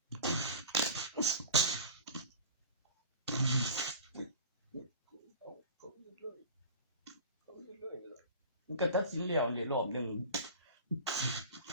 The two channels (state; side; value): inverted; both; correlation -0.36